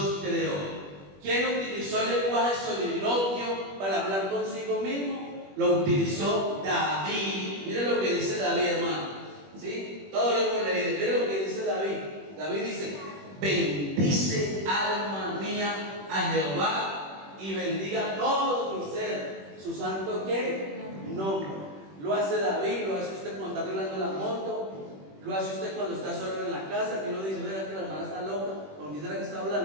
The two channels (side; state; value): left; late; 21 ms